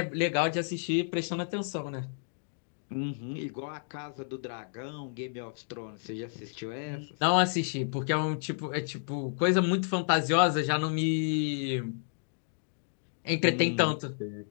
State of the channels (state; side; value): silent; right; digital silence